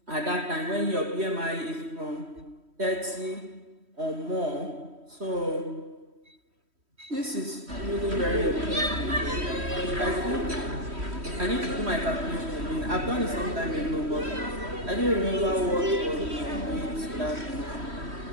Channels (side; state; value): left; late; 3.1 ms